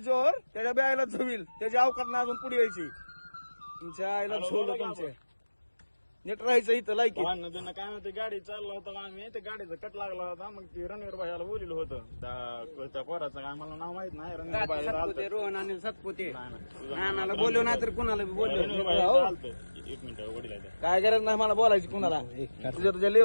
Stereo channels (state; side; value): inverted; both; correlation -1.00